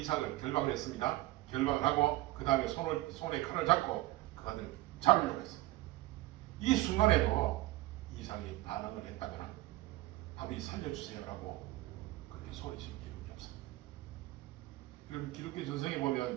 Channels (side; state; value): left; quieter; 17.6 dB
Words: 결박을 했습니다. 결박을 하고 그 다음에 손에 칼을 잡고 그 아들 잡으려고 했습니다. 이 순간에도 이삭이 반항을 했다거나 아버지 살려주세요라고 그렇게 소리친 기록이 없습니다. 그럼 기독교 전성에